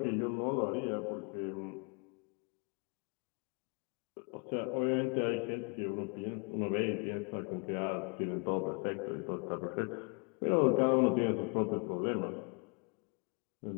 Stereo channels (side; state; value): right; quieter; 36.2 dB